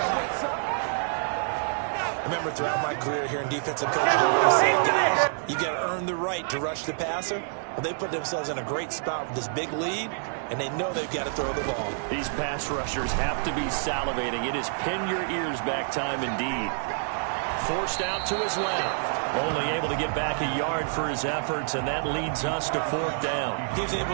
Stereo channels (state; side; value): silent; left; 60 dB below the other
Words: I remember throughout my career here in defensive coaching, I always say, guys, you got to earn the right to rush the passer. Well, they put themselves in a great spot with this big lead, and they know they've got to throw the ball. These pass rushers have to be salivating. It is pin your ears back time indeed. Forced out to his left. Only able to get back a yard for his efforts, and that leads us to 4th down. He was